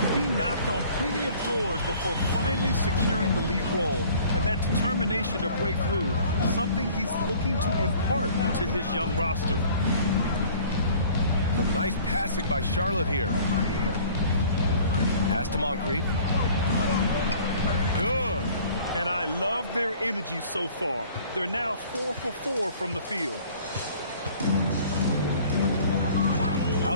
He knocked on plenty of doors before finally securing the lead role. And that determination to break through, something he's looking to impart to his young roster. Some nice passing by Charlotte here. Pass to Moncrief. Good. And I love their energy so far. They're now 4 for 4 from the field.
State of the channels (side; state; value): both; inverted; correlation -0.51